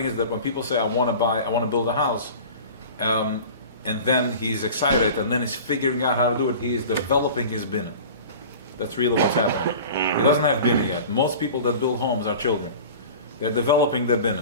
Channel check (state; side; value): inverted; both; correlation -0.38